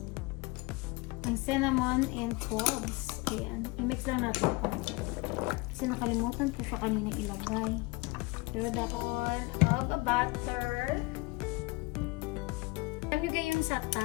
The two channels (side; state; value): right; quieter; 24.2 dB